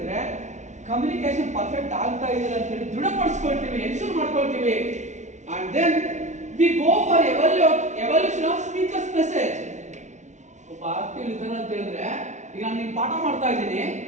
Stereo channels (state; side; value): late; left; 0.34 ms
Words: ಕಮ್ಯುನಿಕೇಶನ್ ಪರ್ಫೆಕ್ಟ್ ಆಗ್ತಾ ಇದೆ ಅಂತ ಹೇಳಿ ದೃಢಪಡಿಸ್ಕೊಳ್ತೀವಿ, ಎನ್ಶೂರ್ ಮಾಡ್ಕೊಳ್ತೀವಿ. And then we go for evaluation of speaker's message. ಒಬ್ಬ ಆಕ್ಟಿವ್ ಲಿಸನರ್ ಅಂತ ಹೇಳಿದ್ರೆ ಈಗ ನಾನು ನಿಮ್ಗೆ ಪಾಠ ಮಾಡ್ತಾ ಇದ್ದೀನಿ,